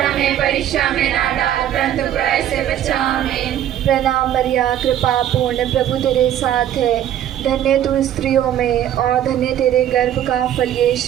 हमें परीक्षा में ना डाल परंतु बुराई से बचा। आमीन। प्रणाम मरिया, कृपा पूर्ण, प्रभु तेरे साथ है, धन्य तू स्त्रियों में और धन्य तेरे गर्भ का फल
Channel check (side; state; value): left; quieter; 11.2 dB